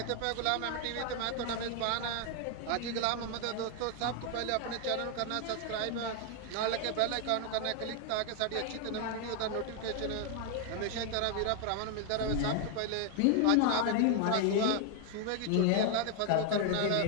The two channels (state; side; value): different; both; correlation 0.00